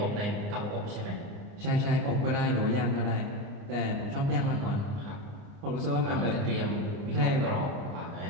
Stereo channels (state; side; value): late; left; 29 ms